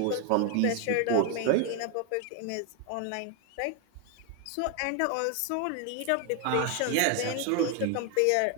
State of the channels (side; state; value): both; different; correlation 0.01